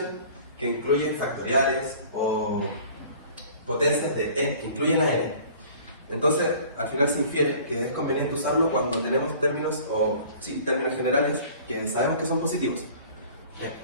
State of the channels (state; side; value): inverted; both; correlation -0.48